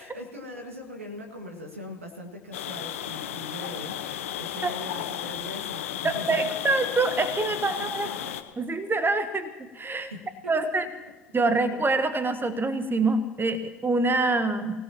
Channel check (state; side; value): normal; both; correlation 0.55